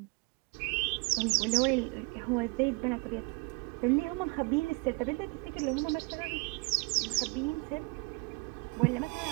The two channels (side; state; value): left; quieter; 30.4 dB